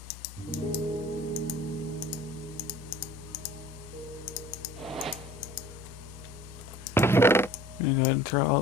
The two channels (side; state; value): both; normal; correlation 0.47